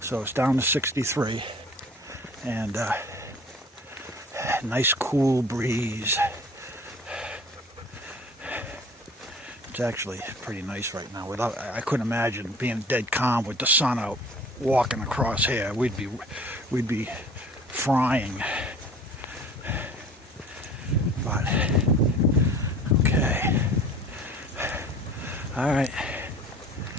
so it's down to 63, and nice cool breeze. It's actually pretty nice right now. I couldn't imagine being dead calm with the sun out, walking across here. We'd be frying. But okay. All right.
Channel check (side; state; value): both; normal; correlation 0.47